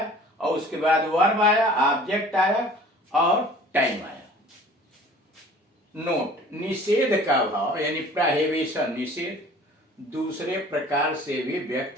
और उसके बाद वर्ब आया, ऑब्जेक्ट आया और टाइम आया. नोट, निषेध का भाव यानी प्रोहिबिशन, निषेध दूसरे प्रकार से भी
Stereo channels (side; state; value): both; normal; correlation 0.48